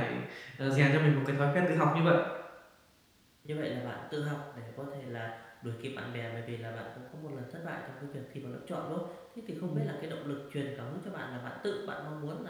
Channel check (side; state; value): both; identical; correlation 1.00